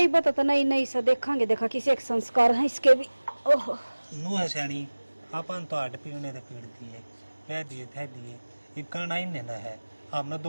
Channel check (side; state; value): both; inverted; correlation -1.00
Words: बता तो नहीं नहीं से देखांगे, देखा किसी एक संस्कार है इसके भी। ओह नू है सैनी, अपन तो हट पीने दे पीड़ दिए, कह दिए थे दिए, ये करना ही नहीं है। हमने